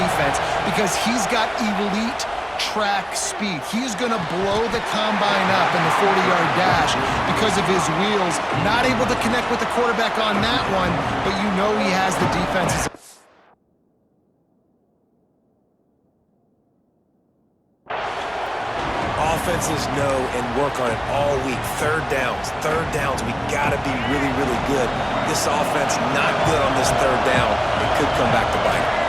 because he's got elite track speed. He is going to blow the combine up in the 40-yard dash because of his wheels. Not able to connect with the quarterback on that one, but you know he has the defenses. Offenses know and work on it all week. Third downs, we got to be really, really good. This offense not good on this third down. It could come back to bite them.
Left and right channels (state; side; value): identical; both; correlation 1.00